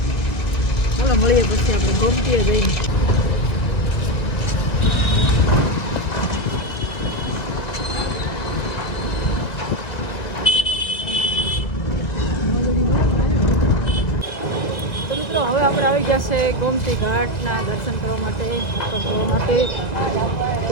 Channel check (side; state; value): right; late; 1.9 ms